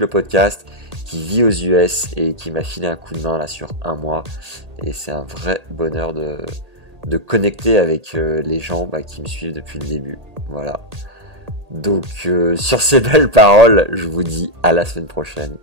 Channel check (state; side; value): late; left; 1.8 ms